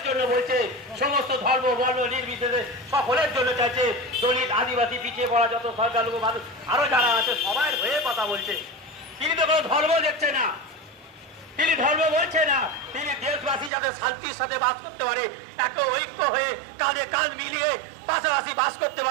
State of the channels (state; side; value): drops out; left; at 13.7 s